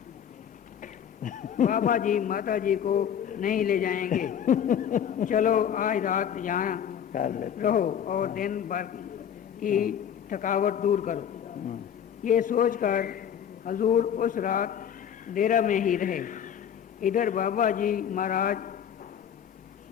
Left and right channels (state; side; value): quieter; right; 8.8 dB